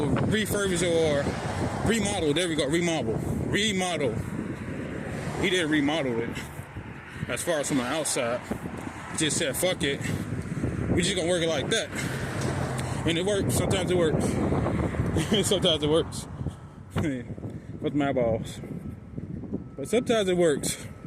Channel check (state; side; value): identical; both; correlation 1.00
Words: refurbish or remodel. There we go. Remodel. He didn't remodel it. As far as from the outside, he just said, "Fuck it. We just gonna work it like that." And it works. Sometimes it works. Sometimes it works. With my balls. But sometimes it works.